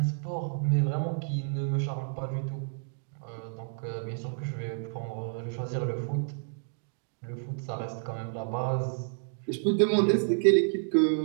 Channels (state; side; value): silent; left; digital silence